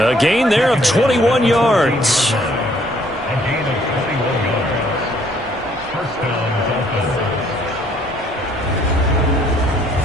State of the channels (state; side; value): normal; both; correlation 0.64